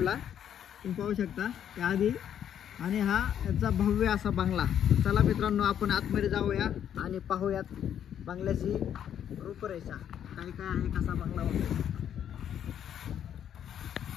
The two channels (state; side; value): quieter; right; 9.6 dB